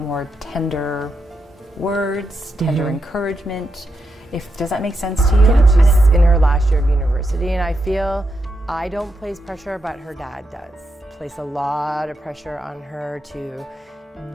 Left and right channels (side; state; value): both; normal; correlation 0.84